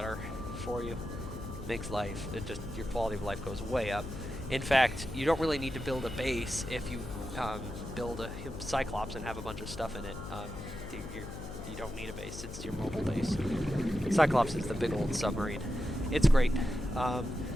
for you. Makes life, your quality of life goes way up. In fact, you don't really need to build a base if you build a Cyclops and have a bunch of stuff in it. You don't need a base, it's your mobile base. Cyclops is the big old submarine. It's great. If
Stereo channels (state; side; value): noise; left; hum, 10 dB below the sound